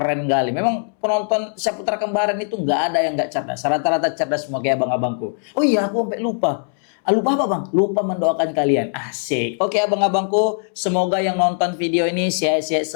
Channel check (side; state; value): right; silent; 65 dB below the other